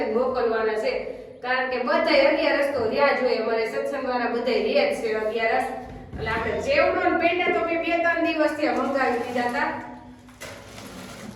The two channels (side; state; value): both; identical; correlation 1.00